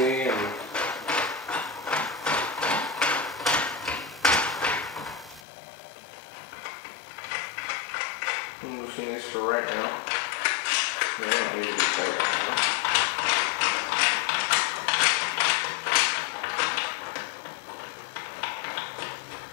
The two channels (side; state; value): right; drops out; at 5.4 s